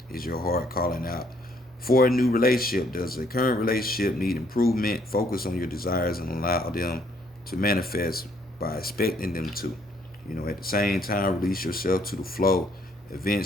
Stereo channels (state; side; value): normal; both; correlation 0.67